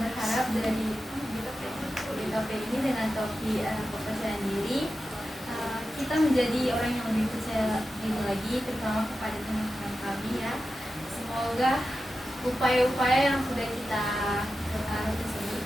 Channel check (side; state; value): both; normal; correlation 0.92